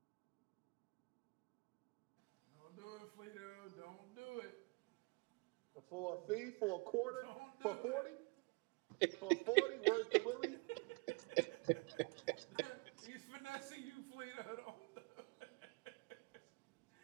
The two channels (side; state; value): left; quieter; 30.0 dB